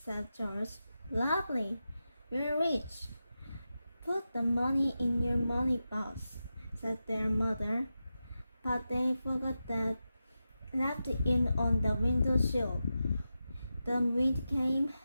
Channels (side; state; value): both; inverted; correlation -0.91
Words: George. Lovely, we're rich. Put the money in your money box, said their mother. But they forgot that, left it on the windowsill. The wind came